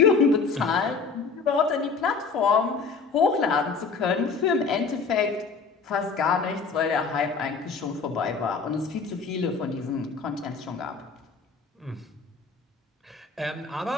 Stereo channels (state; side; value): quieter; right; 4.9 dB